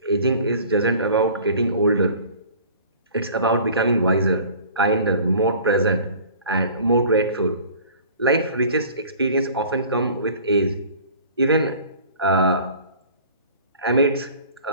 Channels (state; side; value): inverted; both; correlation -0.46